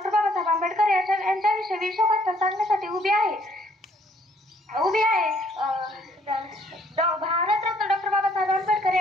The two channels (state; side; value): normal; both; correlation 0.64